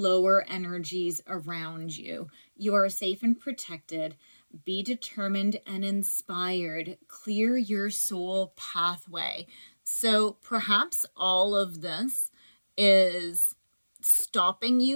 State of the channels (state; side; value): inverted; both; correlation -1.00